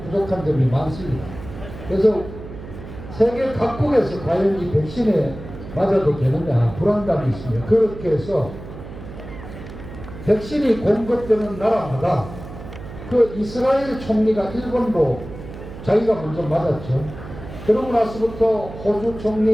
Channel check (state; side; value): noise; right; hum, 13 dB below the sound